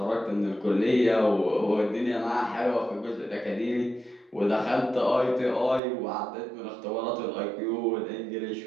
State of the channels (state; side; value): drops out; left; at 5.8 s